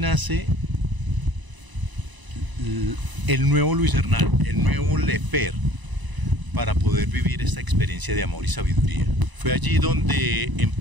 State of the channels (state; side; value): late; left; 1.0 ms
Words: el nuevo Luis Hernán, el nuevo Lefer, para poder vivir esta experiencia de amor y sabiduría. Fue allí donde